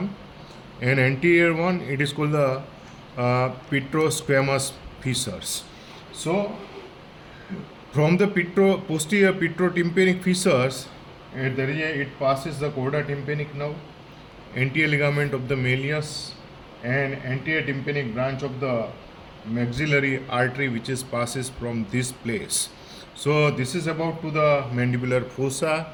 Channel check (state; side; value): identical; both; correlation 1.00